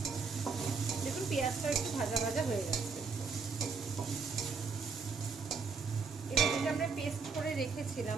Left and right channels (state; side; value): quieter; left; 4.9 dB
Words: দেখুন, পেঁয়াজটা একটু ভাজা ভাজা হয়ে গেছে। এবার যেটা আমরা পেস্ট করে রেখেছিলাম